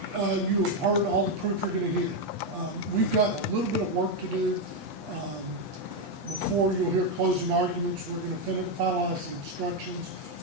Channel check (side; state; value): left; late; 8.4 ms